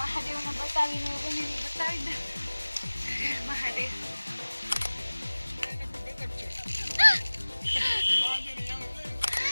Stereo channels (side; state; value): both; inverted; correlation -1.00